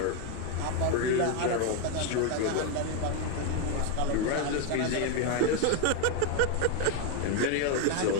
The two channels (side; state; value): both; different; correlation 0.01